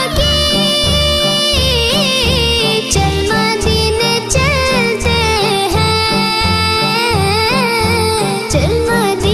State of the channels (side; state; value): both; identical; correlation 1.00